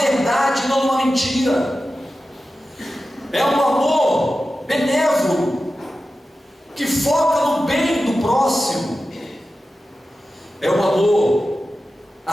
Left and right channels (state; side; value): normal; both; correlation 0.93